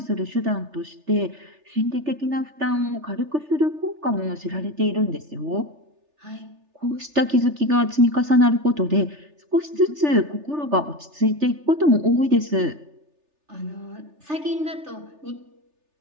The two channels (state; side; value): late; left; 3.4 ms